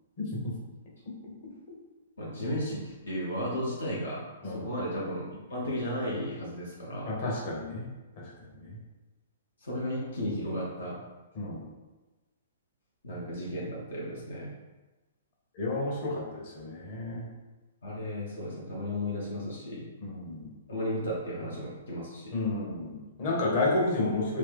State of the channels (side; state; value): both; inverted; correlation -0.46